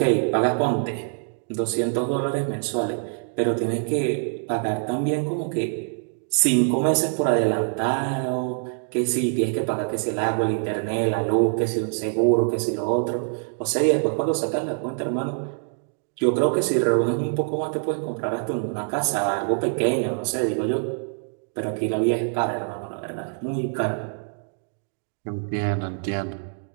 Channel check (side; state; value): left; silent; 62 dB below the other